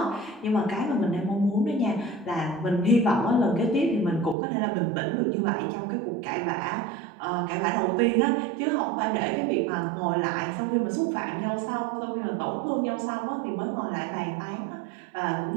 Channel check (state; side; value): drops out; left; at 4.4 s